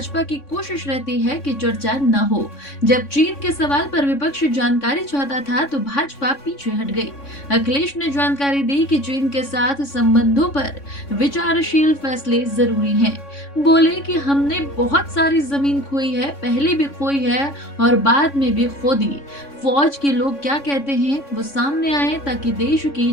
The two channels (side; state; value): right; late; 3.6 ms